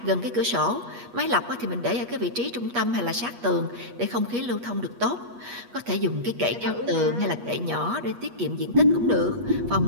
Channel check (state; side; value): late; left; 8.3 ms